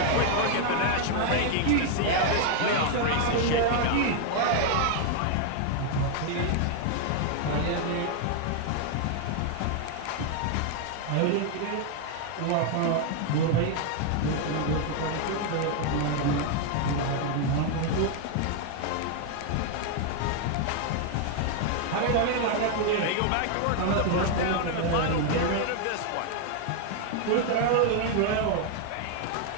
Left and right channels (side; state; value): both; different; correlation 0.00